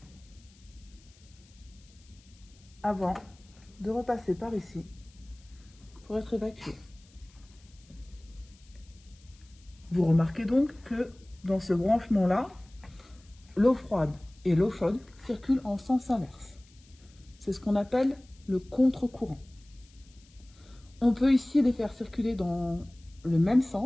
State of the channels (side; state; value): left; noise; hiss, 28 dB below the sound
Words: avant de repasser par ici pour être évacué. Vous remarquez donc que dans ce branchement-là, l'eau froide et l'eau chaude circulent en sens inverse. C'est ce qu'on appelle le contre-courant. On peut ici les faire circuler dans le même